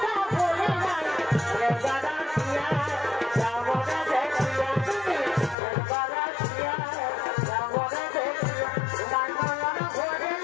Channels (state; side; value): drops out; right; at 5.6 s